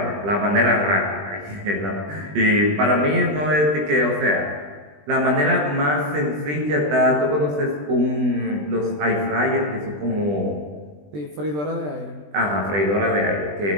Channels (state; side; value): late; left; 20 ms